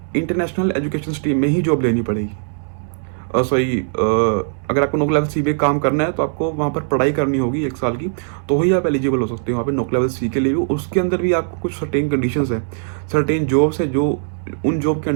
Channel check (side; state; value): left; silent; 66 dB below the other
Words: इंटरनेशनल एजुकेशन स्ट्रीम में ही जॉब लेनी पड़ेगी। सॉरी, अगर आपको नोक लेवल सी पे काम करना है तो आपको वहाँ पर पढ़ाई करनी होगी 1 साल की, तो ही आप एलिजिबल हो सकते हो वहाँ पे नोक लेवल सी के लिए भी। उसके अंदर भी आपको कुछ सर्टेन कंडीशंस है, सर्टेन जॉब्स है, जो उन जॉब के